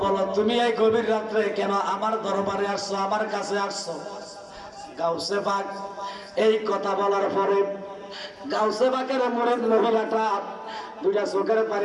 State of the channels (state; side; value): identical; both; correlation 1.00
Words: বলো তুমি এই গভীর রাত্রে কেন আমার দরবারে আসছো আমার কাছে আসছো গাউসে পাক এই কথা বলার পরে গাউসে পাকের মুরিদ মহিলাটা দুইটা চোখের